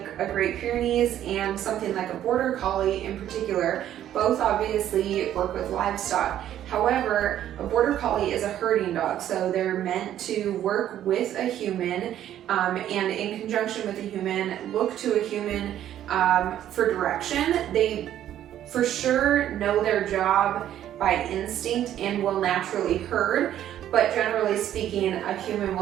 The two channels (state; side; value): quieter; left; 11.5 dB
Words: a Great Pyrenees and something like a Border Collie in particular, both obviously work with livestock. However, a Border Collie is a herding dog, so they're meant to work with a human and in conjunction with a human, look to a human for direction. They for sure know their job by instinct and will naturally herd, but generally speaking, a human